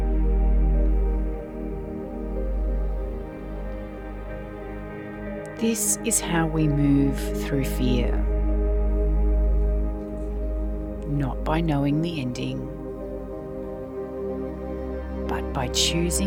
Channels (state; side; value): identical; both; correlation 1.00